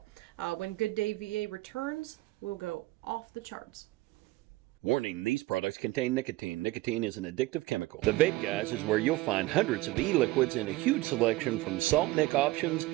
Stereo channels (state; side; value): quieter; left; 19.2 dB